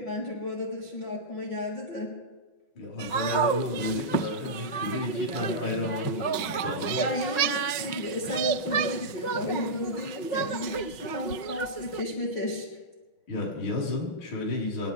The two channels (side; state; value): right; late; 5.5 ms